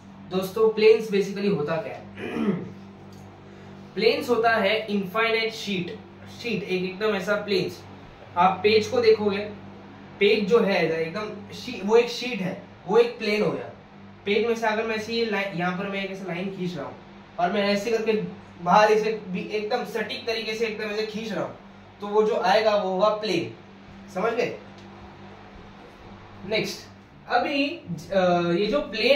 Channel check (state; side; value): identical; both; correlation 1.00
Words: दोस्तों, प्लेन्स बेसिकली होता क्या है? प्लेन्स होता है इनफाइनाइट शीट एकदम ऐसा प्लेन्स। आप पेज को देखोगे, पेज जो है एकदम वो एक शीट है, वो एक प्लेन हो गया। पेज में से अगर मैं ऐसे यहाँ पर मैं एक ऐसा लाइन खींच रहा हूँ और मैं ऐसे करके बाहर इसे एकदम सटीक तरीके से एकदम ऐसे खींच रहा हूँ, तो वो जो आएगा वो होगा प्लेन। समझ गए? नेक्स्ट, अभी ये जो